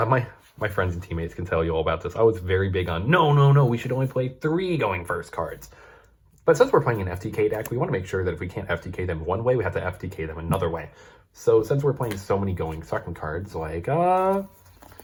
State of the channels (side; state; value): both; identical; correlation 1.00